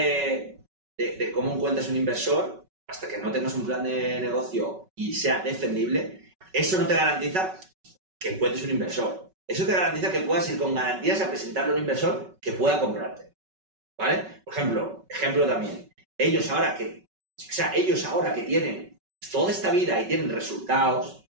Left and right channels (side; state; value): left; late; 5.3 ms